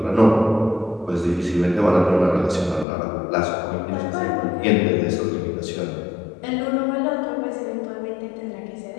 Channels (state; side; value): drops out; right; at 2.9 s